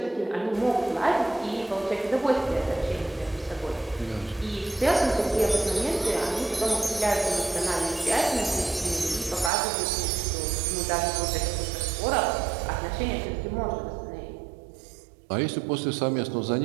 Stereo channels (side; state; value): left; drops out; at 9.5 s